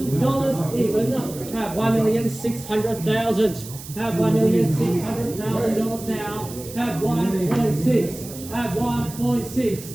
even. Have $1,600,000. Have $1,600,000 now. Have 1.6. Have 1.6.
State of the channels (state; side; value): noise; right; hiss, 14 dB below the sound